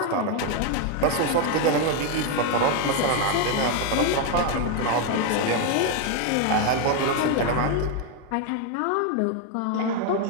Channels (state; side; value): different; both; correlation 0.01